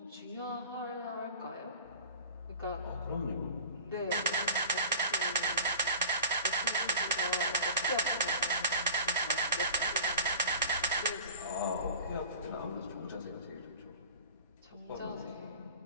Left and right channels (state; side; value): inverted; both; correlation -0.39